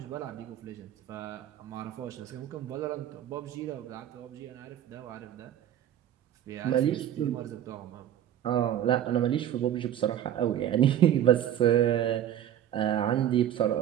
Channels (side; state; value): left; quieter; 11.0 dB